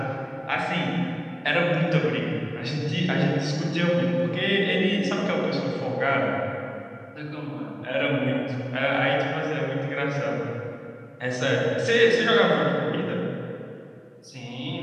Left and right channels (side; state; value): both; identical; correlation 1.00